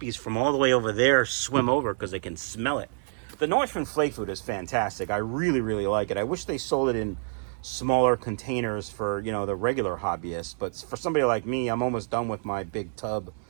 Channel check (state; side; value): silent; left; digital silence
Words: from all the way over there swim over because they can smell it. The Northern flake food is fantastic. I really, really like it. I wish they sold it in smaller containers for, you know, the regular hobbyists. But for somebody like me, I'm almost done with my big tub